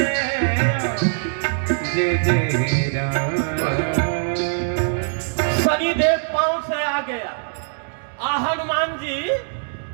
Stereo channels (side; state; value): left; silent; digital silence